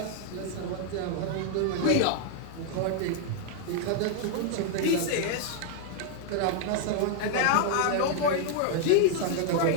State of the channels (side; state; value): both; different; correlation 0.00